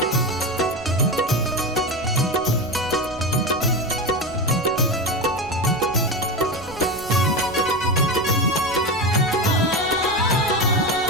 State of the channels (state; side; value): noise; right; rumble, 18 dB below the sound